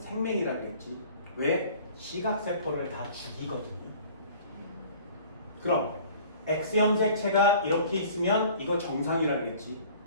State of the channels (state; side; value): inverted; both; correlation -0.49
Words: 그랬지. 왜? 시각세포를 다 죽이거든요. 그럼 X형 색체가 이렇게 있으면 이거 정상이라 그랬지.